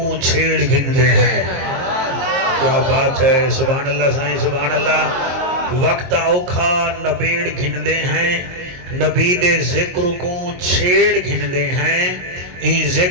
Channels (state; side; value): late; left; 22 ms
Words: چھیڑ گھندے ہیں کیا بات ہے سبحان اللہ سائیں سبحان اللہ وقت اوکھا نبیڑ گھندے ہیں نبی دے ذکر کو چھیڑ گھندے ہیں این